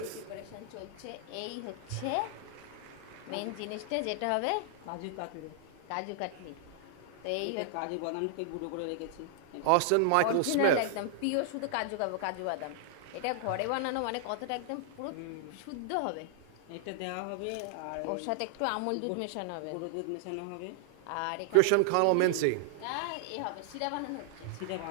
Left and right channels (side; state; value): both; different; correlation -0.01